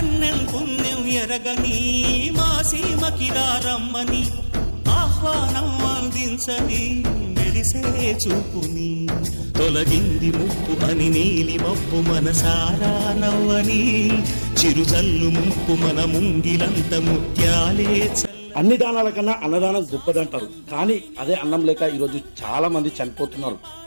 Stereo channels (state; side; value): inverted; both; correlation -1.00